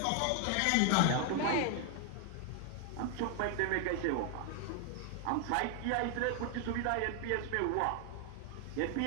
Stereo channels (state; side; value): different; both; correlation 0.00